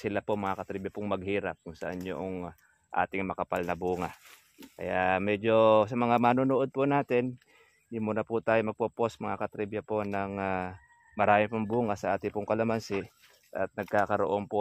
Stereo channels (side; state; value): both; identical; correlation 1.00